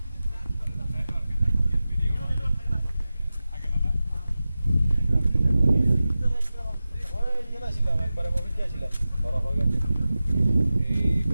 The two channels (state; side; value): inverted; both; correlation -0.95